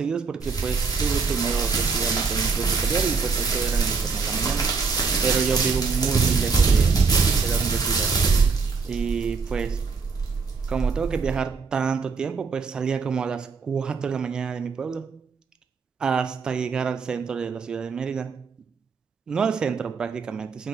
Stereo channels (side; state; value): left; quieter; 5.0 dB